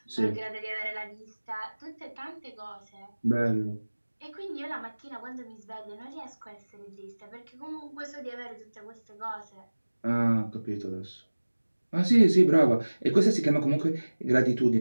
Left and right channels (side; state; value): both; inverted; correlation -1.00